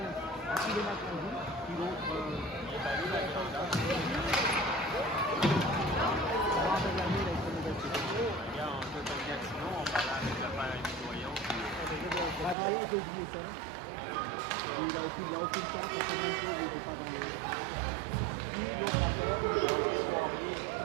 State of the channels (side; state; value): left; drops out; at 12.6 s